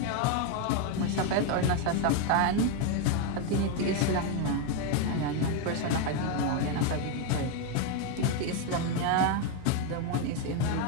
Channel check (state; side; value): different; both; correlation 0.01